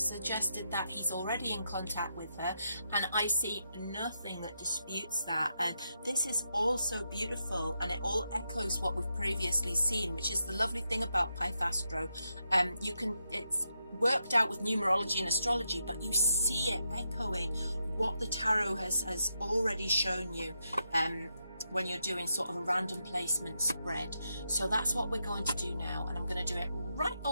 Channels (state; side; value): inverted; both; correlation -0.83